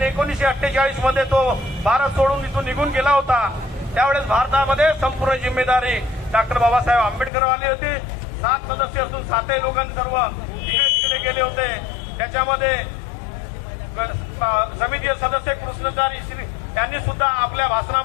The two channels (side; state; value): right; drops out; at 7.3 s